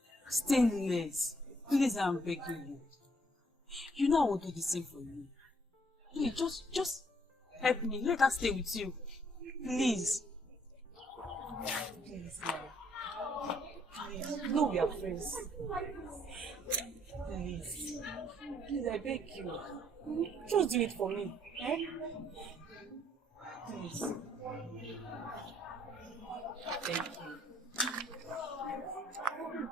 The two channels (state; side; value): normal; both; correlation 0.67